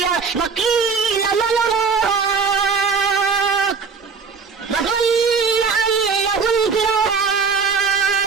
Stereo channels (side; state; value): left; quieter; 5.3 dB